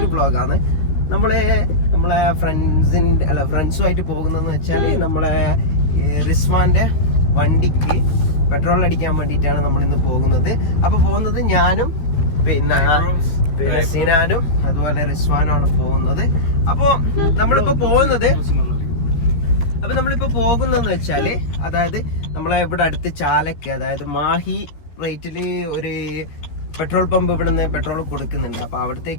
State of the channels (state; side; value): late; right; 13 ms